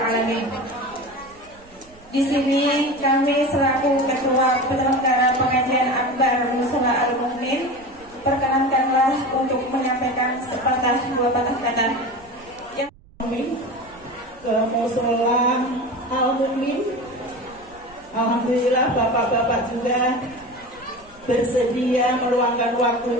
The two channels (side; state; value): right; noise; rumble, 26 dB below the sound